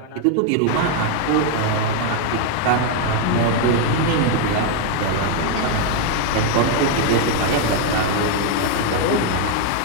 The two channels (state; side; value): different; both; correlation 0.00